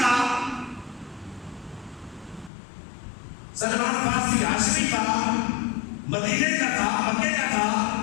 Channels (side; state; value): right; drops out; at 2.5 s